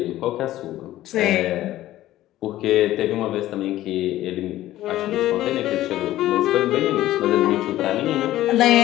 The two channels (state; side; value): quieter; right; 14.6 dB